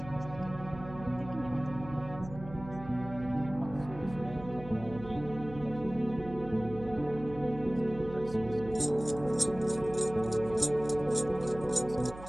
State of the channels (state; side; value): noise; right; hum, 14 dB below the sound